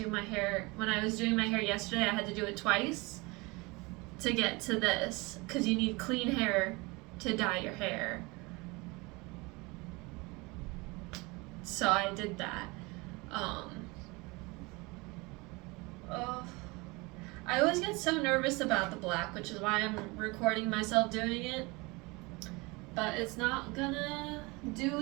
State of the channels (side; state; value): left; quieter; 25.4 dB